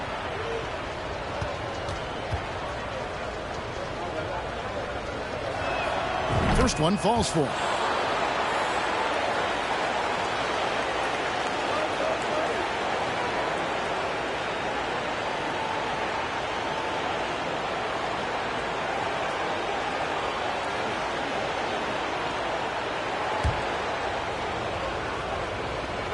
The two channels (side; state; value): both; identical; correlation 1.00